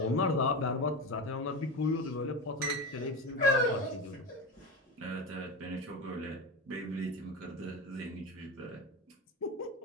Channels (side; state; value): both; normal; correlation 0.22